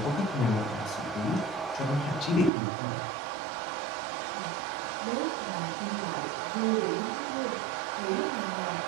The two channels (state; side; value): drops out; left; at 2.5 s